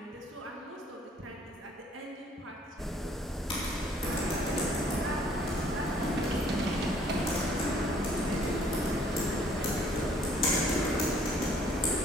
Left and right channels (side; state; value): both; normal; correlation 0.60